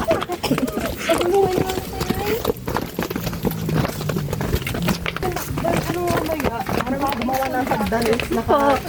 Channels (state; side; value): identical; both; correlation 1.00